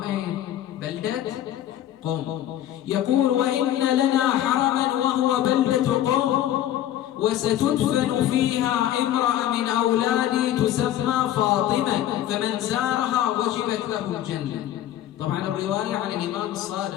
أين؟ بلدة قم. يقول: وإن لنا حرما وهو بلدة قم، وستدفن فيها امرأة من أولادي تسمى فاطمة، فمن زارها وجبت له الجنة. طبعا الرواية عن الإمام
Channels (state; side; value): quieter; right; 12.3 dB